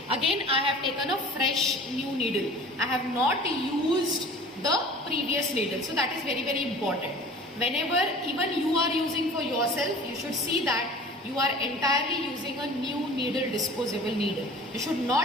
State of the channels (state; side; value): normal; both; correlation 0.43